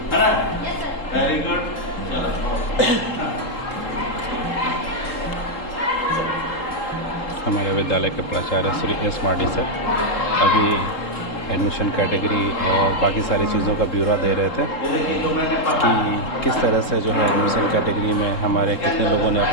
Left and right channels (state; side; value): late; right; 3.8 ms